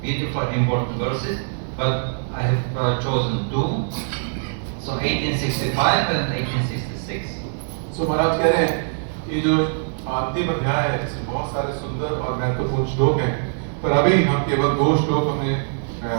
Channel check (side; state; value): left; silent; 64 dB below the other